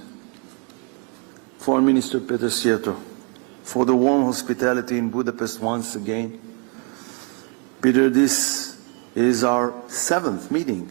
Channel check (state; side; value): quieter; left; 36.9 dB